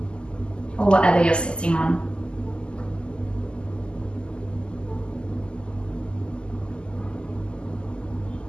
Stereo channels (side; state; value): right; late; 0.049 ms